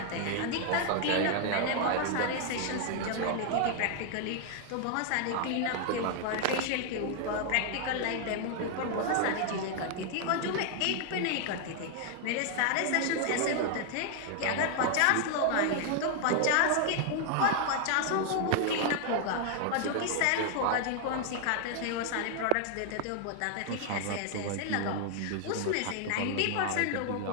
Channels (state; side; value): different; both; correlation 0.00